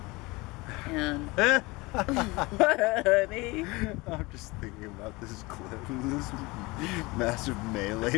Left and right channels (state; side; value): quieter; right; 23.5 dB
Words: and. Honey. I'm just thinking about this clip. This massive